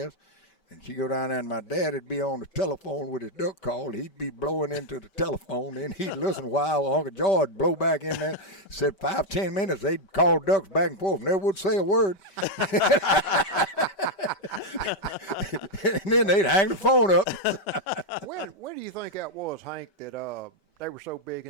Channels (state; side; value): late; right; 5.2 ms